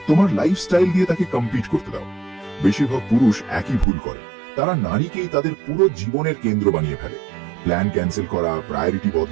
তোমার লাইফস্টাইল দিয়ে তাকে কম্পিট করতে দাও। বেশিরভাগ পুরুষ একই ভুল করে, তারা নারীকেই তাদের পুরো জীবনের কেন্দ্র বানিয়ে ফেলে। প্ল্যান ক্যান্সেল করা, প্রায়োরিটি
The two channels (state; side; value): drops out; left; at 3.9 s